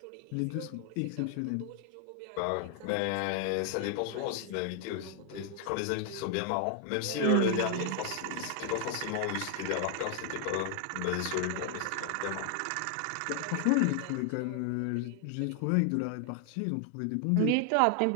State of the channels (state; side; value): different; both; correlation 0.00